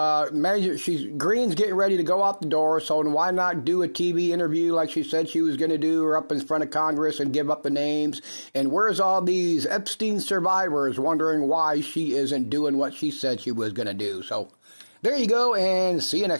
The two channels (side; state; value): both; inverted; correlation -1.00